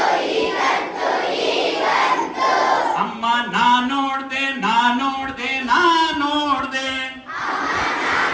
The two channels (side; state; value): both; identical; correlation 1.00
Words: ಅಮ್ಮ ನಾ ನೋಡ್ದೆ, ನಾ ನೋಡ್ದೆ, ನಾ ನೋಡ್ದೆ,